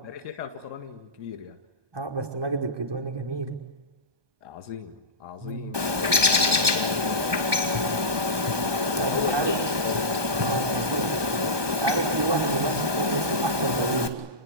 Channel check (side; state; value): left; late; 1.2 ms